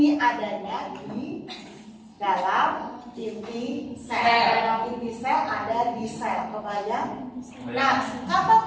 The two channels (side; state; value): both; identical; correlation 1.00